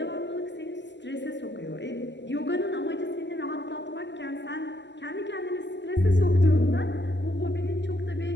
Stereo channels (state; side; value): late; right; 0.51 ms